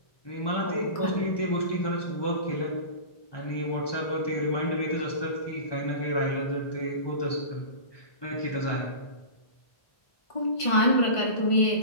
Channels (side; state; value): right; late; 1.5 ms